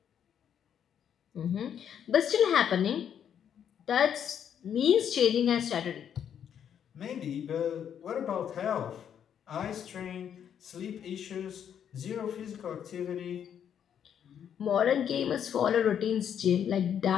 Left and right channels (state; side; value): quieter; right; 8.8 dB